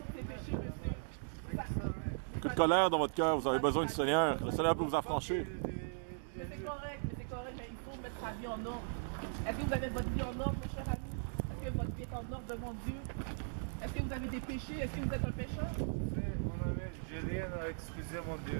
de ses péchés, monsieur. Beaucoup de colère dans votre cœur, vous avez besoin du Seigneur. Le Seigneur peut vous affranchir. Mais c'est correct, mais il faut mettre sa vie en ordre. Est-ce que vous avez votre vie en ordre, mes chers amis? Est-ce que votre vie est en ordre devant Dieu? Est-ce que vous avez des péchés? Est-ce que vous êtes un pécheur? J'ai rien à excuser, mon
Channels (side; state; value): left; silent; digital silence